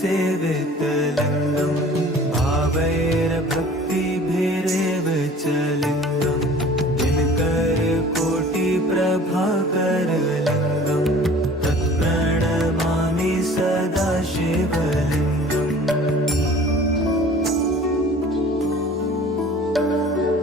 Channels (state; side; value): normal; both; correlation 0.47